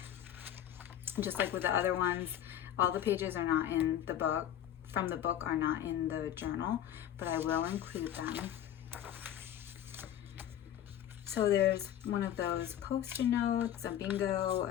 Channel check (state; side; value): quieter; right; 11.0 dB